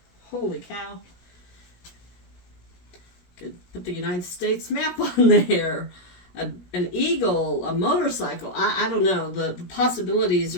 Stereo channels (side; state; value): right; late; 17 ms